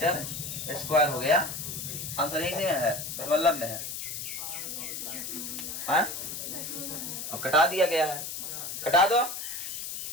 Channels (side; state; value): left; noise; hiss, 6 dB below the sound